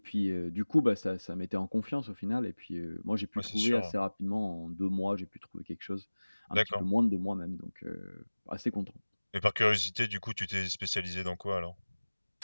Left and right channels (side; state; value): both; inverted; correlation -1.00